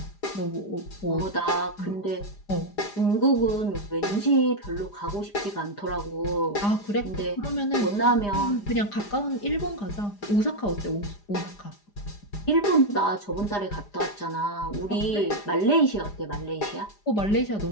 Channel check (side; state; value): right; late; 4.9 ms